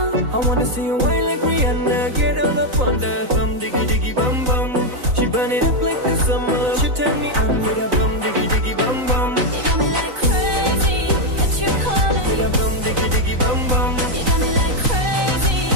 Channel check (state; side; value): late; left; 3.9 ms